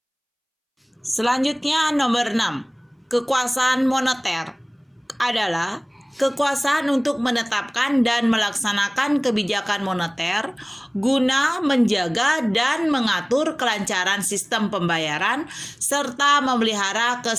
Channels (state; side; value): identical; both; correlation 1.00